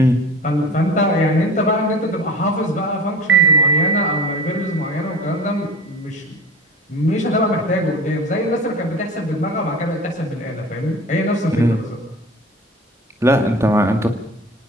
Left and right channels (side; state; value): both; normal; correlation 0.37